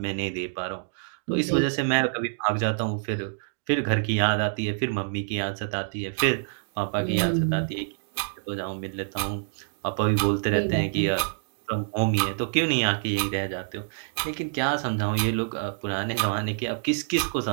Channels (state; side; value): silent; left; digital silence